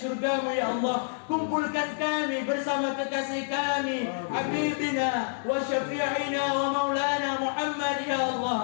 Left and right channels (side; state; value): right; silent; 59 dB below the other